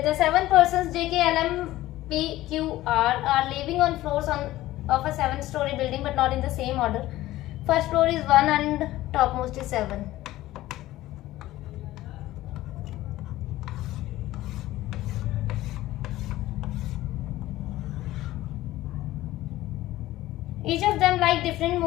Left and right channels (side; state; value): right; quieter; 16.0 dB